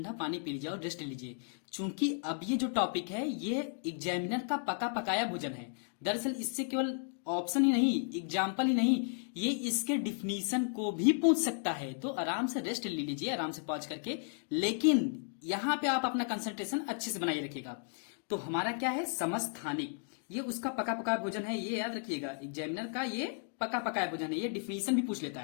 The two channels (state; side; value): silent; right; 55 dB below the other